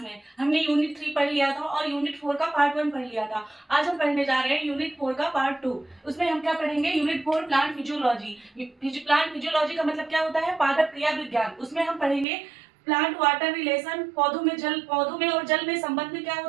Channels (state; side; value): drops out; left; at 12.2 s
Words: में। हमने यूनिट 3 पढ़ लिया था और यूनिट 4 का पार्ट 1 पढ़ लिया था। आज हम पढ़ने जा रहे हैं यूनिट 4 का पार्ट 2। उसमें हम क्या पढ़ेंगे? Unit 4 plant physiology. Plant physiology का मतलब क्या होता है? पादप क्रिया विज्ञान। उसमें हम पढ़ेंगे प्लांट वाटर रिलेशन, पौधों में और जल में संबंध क्या